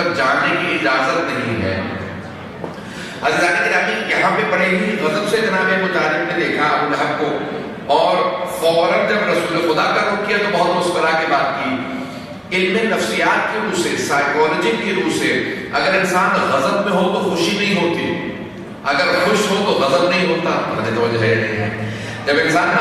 جانے کی اجازت نہیں ہے۔ عزیزان گرامی، یہاں پہ بڑے ہی غضب سے جناب ابو طالب نے دیکھا ابو لہب کو، اور فوراً جب رسول خدا کا رخ کیا تو بہت مسکرا کے بات کی۔ علم نفسیات کی روح سے، سائیکالوجی کی روح سے، اگر انسان غضب میں ہو تو خوشی نہیں ہوتی، اگر خوش ہو تو غضب نہیں ہوتا، مجھے توجہ ہے نہیں ہے۔ جب انسان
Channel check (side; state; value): both; identical; correlation 1.00